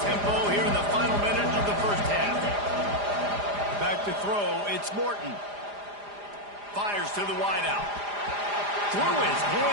tempo here in the final minute of the 1st half. Back to throw, it's Morton. Fires to the wideout. Through his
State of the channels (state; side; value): late; left; 4.9 ms